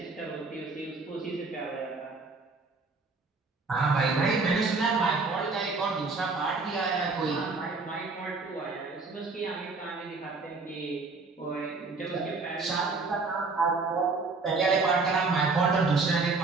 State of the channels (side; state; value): left; quieter; 4.0 dB